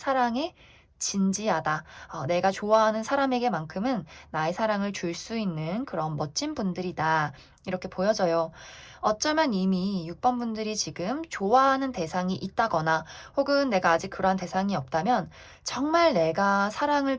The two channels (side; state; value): both; identical; correlation 1.00